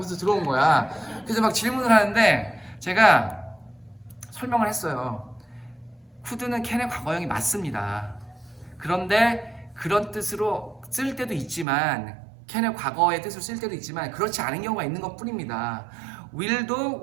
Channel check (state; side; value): drops out; left; at 11.7 s